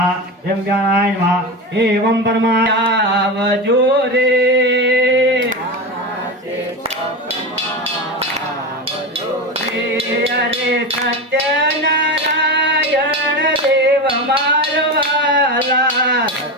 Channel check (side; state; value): both; normal; correlation 0.21